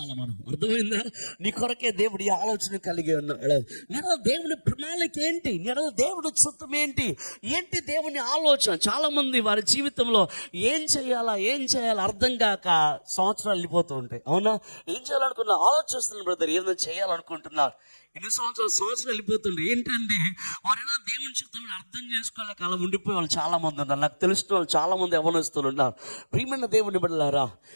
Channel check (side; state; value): both; inverted; correlation -1.00